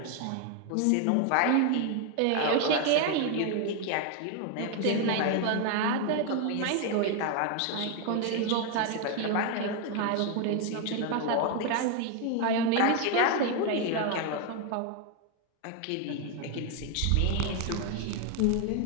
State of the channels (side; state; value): both; different; correlation 0.01